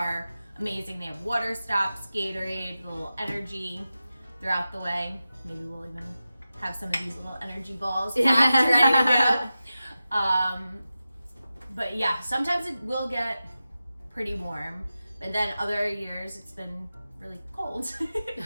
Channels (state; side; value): inverted; both; correlation -0.93